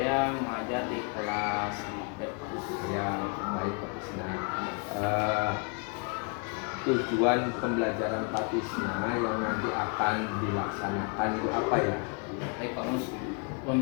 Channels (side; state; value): right; quieter; 35.8 dB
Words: mengajar di kelas 5B Pak Mus. Ya, baik Pak Tisna. Tujuan pembelajaran Pak Tisna yang nanti akan dilaksanakan itu apa ya? Baik Pak Mus.